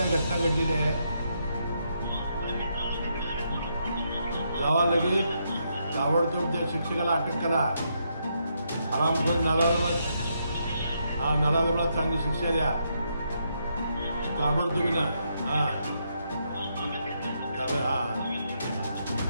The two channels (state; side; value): inverted; both; correlation -0.78